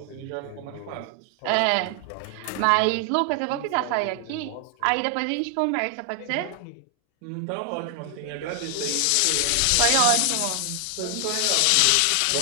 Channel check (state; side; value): different; both; correlation 0.00